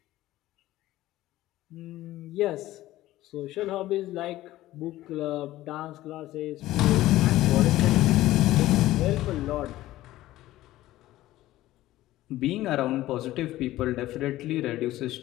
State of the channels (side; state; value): right; quieter; 15.7 dB